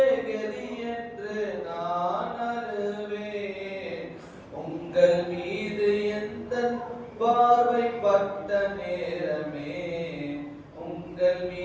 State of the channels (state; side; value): identical; both; correlation 1.00